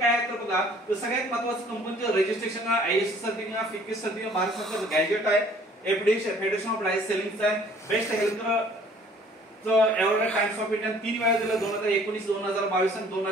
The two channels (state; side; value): normal; both; correlation 0.55